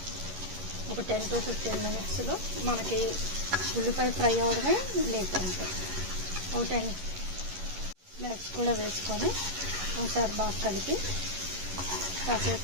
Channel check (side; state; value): left; late; 11 ms